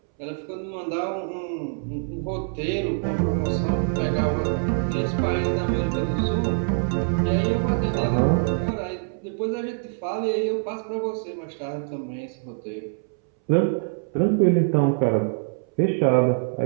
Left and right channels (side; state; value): left; silent; 62 dB below the other